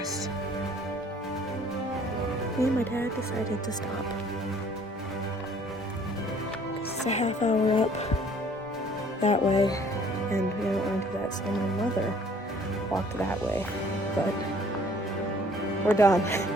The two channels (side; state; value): both; normal; correlation 0.56